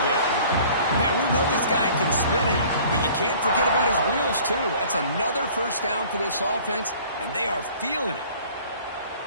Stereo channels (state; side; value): inverted; both; correlation -0.50